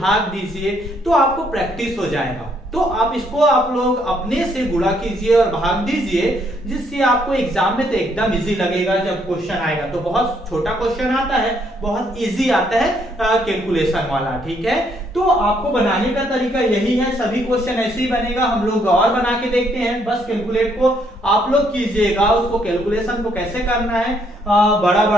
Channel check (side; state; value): both; normal; correlation 0.70